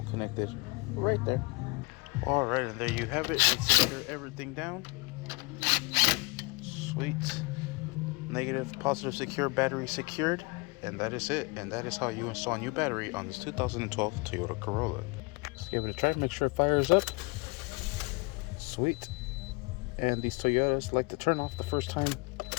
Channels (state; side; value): quieter; right; 26.5 dB